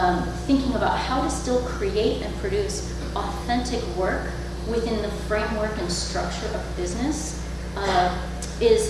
thinking about how to still create and produce authentic work within the framework and structure of business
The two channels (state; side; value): identical; both; correlation 1.00